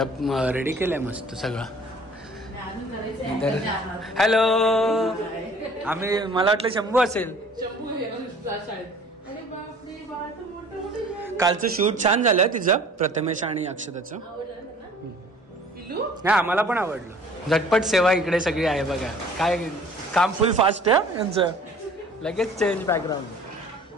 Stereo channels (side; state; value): both; normal; correlation 0.50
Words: रेडी केलंय मस्त सगळं. हॅलो, मला वाटलं शंभू असेल. कालचं शूट छान झालं तिचं, प्रथमेश आणि अक्षताचं. नाही, आम्हाला पण आवडलं. झटपट सेवा इकडे सगळी आहे बघा. काय काम फुल फास्ट आहे यांचं. लगेच चेंज बॅकग्राऊंड.